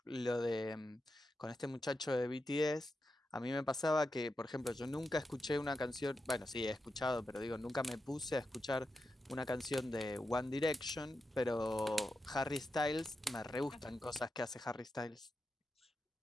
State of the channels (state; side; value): normal; both; correlation 0.88